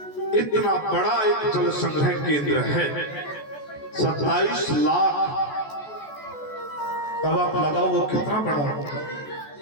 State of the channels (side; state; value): right; late; 14 ms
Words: इतना बड़ा एक जल संग्रह केंद्र है, 27 लाख। अब आप लगाओ वो कितना बड़ा होगा।